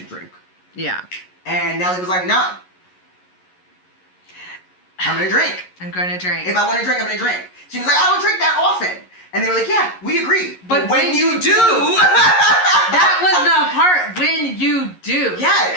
drink. Yeah. And Nelly was like, no. I'm going to drink. I'm going to drink. If I want to drink, I'm going to drink. She was like, I don't drink that often. And they were like, yeah, we agree. But when you do, that was the part, when you do. Yeah.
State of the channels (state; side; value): late; right; 11 ms